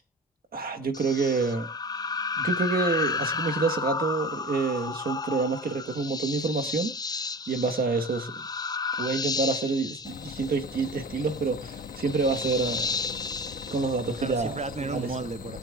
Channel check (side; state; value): both; normal; correlation 0.34